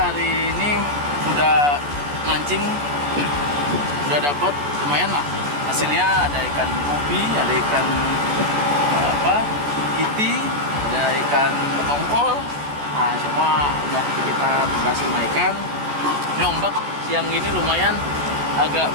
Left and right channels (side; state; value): left; late; 14 ms